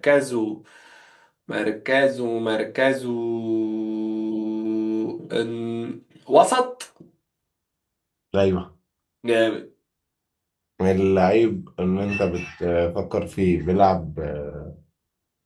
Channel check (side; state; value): both; identical; correlation 1.00